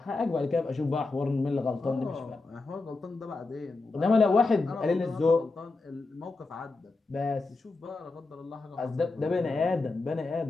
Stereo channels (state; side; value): quieter; right; 3.6 dB